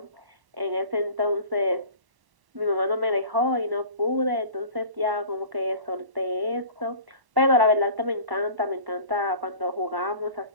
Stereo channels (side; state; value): left; late; 1.1 ms